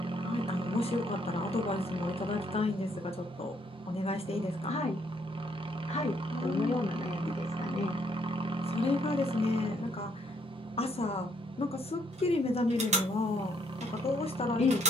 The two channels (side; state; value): both; normal; correlation 0.70